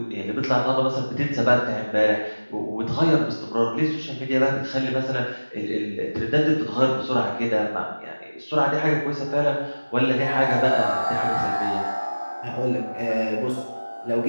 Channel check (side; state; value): both; inverted; correlation -1.00